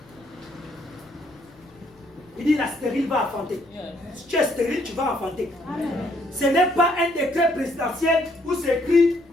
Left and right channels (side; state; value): left; noise; rumble, 29 dB below the sound